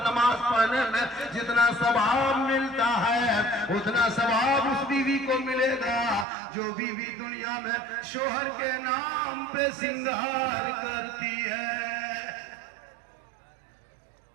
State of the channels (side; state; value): left; drops out; at 6.2 s